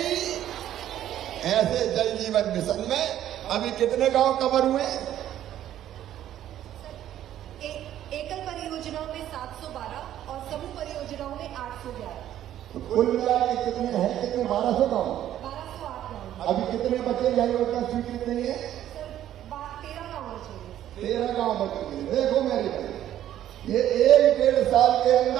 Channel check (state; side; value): quieter; left; 11.8 dB